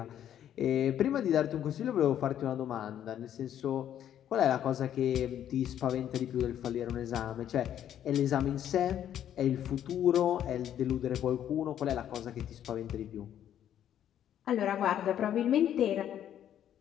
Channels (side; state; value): right; quieter; 10.5 dB